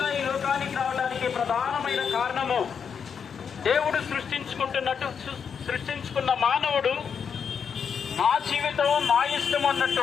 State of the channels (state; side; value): quieter; right; 6.8 dB